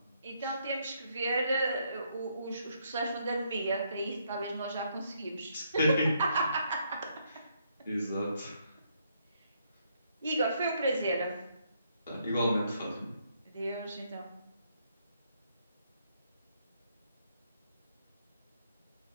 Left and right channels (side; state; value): both; inverted; correlation -0.73